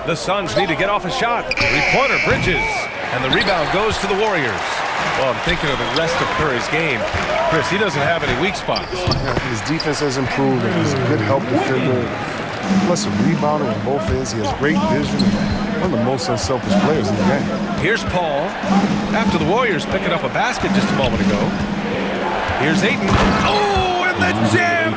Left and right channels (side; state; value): both; identical; correlation 1.00